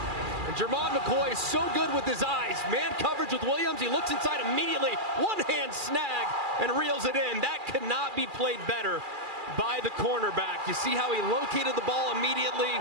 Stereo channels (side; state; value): left; late; 2.4 ms